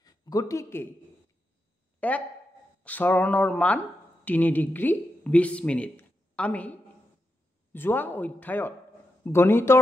গতিকে এক চৰণৰ মান 3 ডিগ্ৰী 20 মিনিট। আমি যোৱা অধ্যায়ত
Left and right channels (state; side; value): normal; both; correlation 0.86